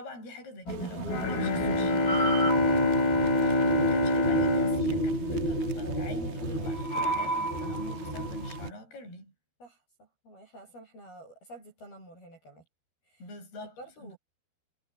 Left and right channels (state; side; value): late; right; 12 ms